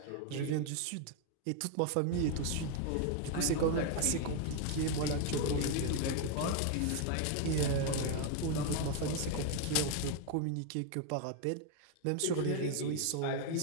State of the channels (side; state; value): both; different; correlation 0.01